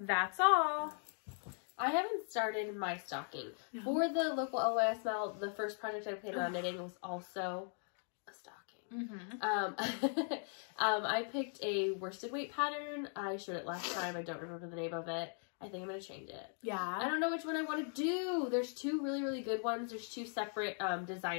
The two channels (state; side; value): silent; right; 52 dB below the other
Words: all. I haven't started my stocking. No. For the local LYSML, the first project I planned on knitting was also a stocking. I picked a worsted weight pattern. I showed it last time. I don't remember the name of it. I think I'm going to change it. Yeah. I don't know which one I want to do. There's two really, really good ones. There's two separate